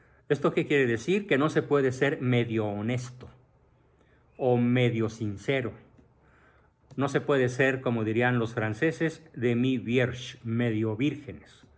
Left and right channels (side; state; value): both; identical; correlation 1.00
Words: ¿Esto qué quiere decir? Que no se puede ser medio honesto o medio sincero. No se puede ser, como dirían los franceses, demi-vierge, medio vírgenes.